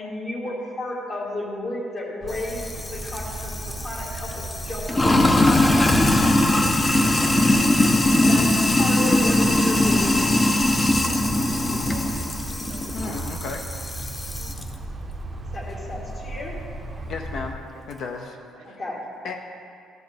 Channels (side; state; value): both; normal; correlation 0.90